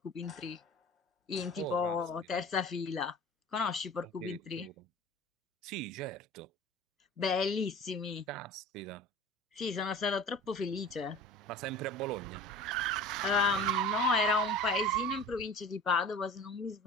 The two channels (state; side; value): normal; both; correlation 0.40